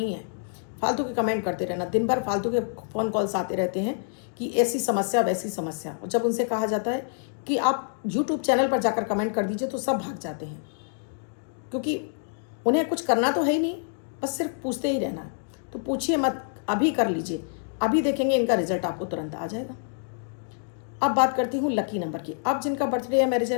है, फालतू के कमेंट करते रहना। दिन भर फालतू के फ़ोन कॉल्स आते रहते हैं कि ऐसी समस्या वैसी समस्या। और जब उनसे कहा जाता है कि आप यूट्यूब चैनल पर जाकर कमेंट कर दीजिए, तो सब भाग जाते हैं, क्योंकि उन्हें कुछ करना तो है ही नहीं, बस सिर्फ पूछते ही रहना है। तो पूछिए मत, अभी कर लीजिए, अभी देखेंगे इनका रिजल्ट आपको तुरंत आ जाएगा। अब बात करती हूँ लकी नंबर की। अब जिनका बर्थडे या मैरिज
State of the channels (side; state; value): right; silent; digital silence